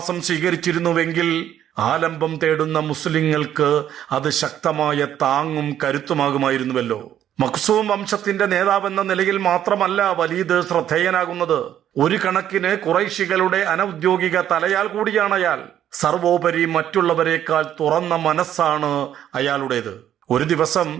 സ്വീകരിച്ചിരുന്നുവെങ്കിൽ ആലംബം തേടുന്ന മുസ്ലിങ്ങൾക്ക് അത് ശക്തമായ താങ്ങും കരുത്തുമാകുമായിരുന്നുവല്ലോ. മഖ്സൂം വംശത്തിന്റെ നേതാവെന്ന നിലയിൽ മാത്രമല്ല വലീദ് ശ്രദ്ധേയനാകുന്നത്, ഒരു കണക്കിന് ഖുറൈശികളുടെ അനൗദ്യോഗിക തലയാൽ കൂടിയാണ് അയാൾ. സർവോപരി മറ്റുള്ളവരെക്കാൾ തുറന്ന മനസ്സാണ് അയാളുടേത്. ഒരു ദിവസം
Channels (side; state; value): left; quieter; 10.8 dB